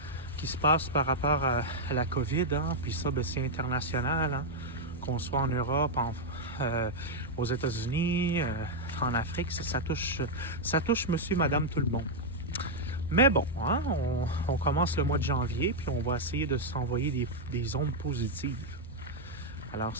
se passe par rapport à la COVID, puis ça, c'est international, qu'on soit en Europe, aux États-Unis, en Afrique, ça touche monsieur, madame, tout le monde. Mais bon, on commence le mois de janvier, puis on va essayer de s'envoyer des ondes positives. Alors,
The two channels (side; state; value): both; normal; correlation -0.02